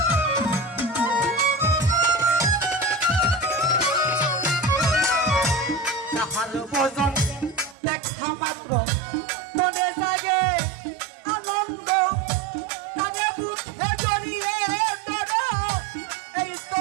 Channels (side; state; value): left; drops out; at 7.8 s